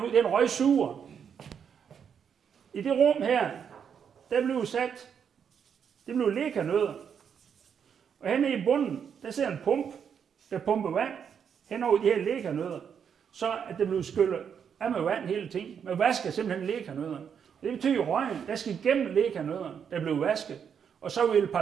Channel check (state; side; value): quieter; left; 7.5 dB